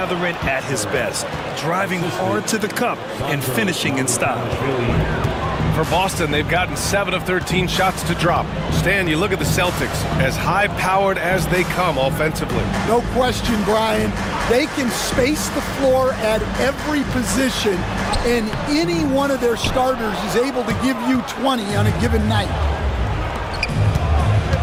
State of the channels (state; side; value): identical; both; correlation 1.00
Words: at his best. Driving hard to the cup and finishing in style. For Boston, they've gotten 7 of 13 shots to drop. Stan, you look at the Celtics, as high-powered as they come offensively. No question, Brian. They can space the floor at every position, and any one of their starters is able to give you 20 on a given night.